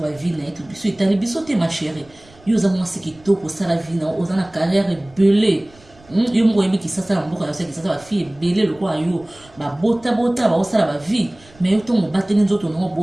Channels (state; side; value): noise; right; rumble, 27 dB below the sound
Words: ba vie na to biso etali biso te ma chérie yo za mwasi kitoko sala vie na ozana carrière belé yo moko yebi kisasa na mboka yose kisasa ba fille ebele lokola yo babota baosala ba vie mais yo ntongo bateli nzoto nango